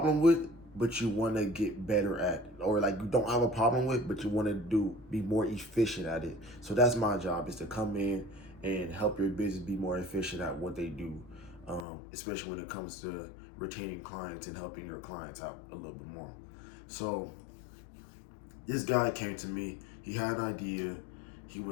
with, but you want to get better at, or like you don't have a problem with, but you want to be more efficient at it. So that's my job, is to come in and help your business be more efficient at what they do, especially when it comes to retaining clients and helping your clients out a little bit more. So this guy came to me. He had an idea. He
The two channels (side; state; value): right; drops out; at 11.9 s